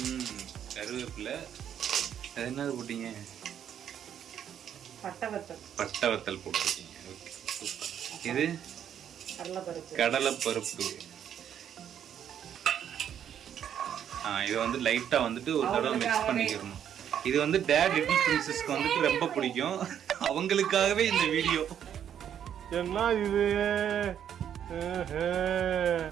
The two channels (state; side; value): quieter; left; 9.3 dB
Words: கருவேப்பிலை. அது என்னது போட்டீங்க? பட்டை வத்தல் போட்டிருக்கீங்க. Okay, super. இது கடலைப்பருப்பு. இதை வந்து லைட்டாக வந்துட்டு ஒரு தடவை மிக்ஸ் பண்ணிக்கிறணும். இது வந்து டேட் லிட்டில் பிரின்சஸ்க்கு வந்துட்டு ரொம்ப பிடிக்கும். அவங்களுக்காகவே இந்த வீடியோ. என்ன இது